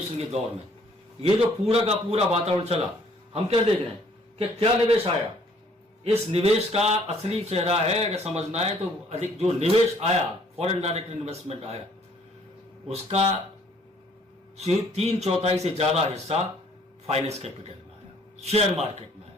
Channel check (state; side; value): normal; both; correlation 0.61